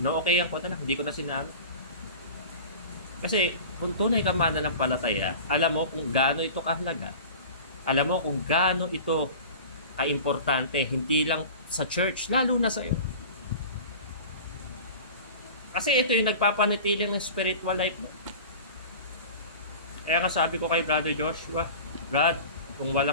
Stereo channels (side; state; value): both; inverted; correlation -0.36